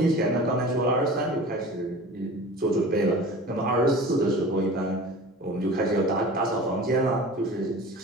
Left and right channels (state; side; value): normal; both; correlation 0.39